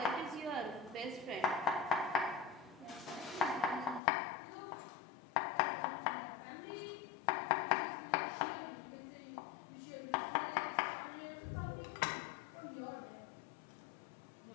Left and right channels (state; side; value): drops out; right; at 4.0 s